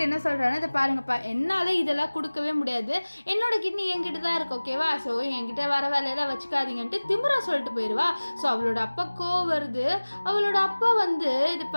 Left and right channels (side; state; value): both; inverted; correlation -1.00